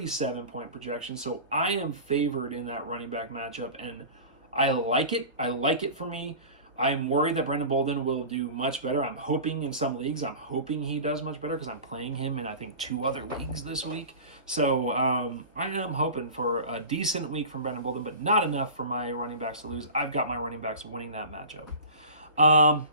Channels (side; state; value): both; inverted; correlation -0.35